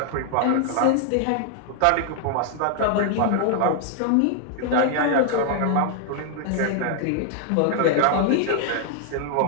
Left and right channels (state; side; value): different; both; correlation 0.00